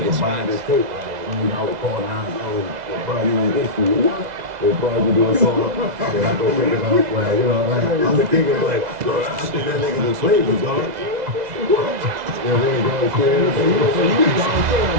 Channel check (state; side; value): late; left; 2.0 ms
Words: could buy this tape. Like, you know, I would call now, we'll probably use this for you. What? They'll probably do a song, and I go pick it up, like, you know, like, I'm the king of, like, bro, I think that nigga just played me, dog. Yeah, they ain't going to scream. So you was Don King,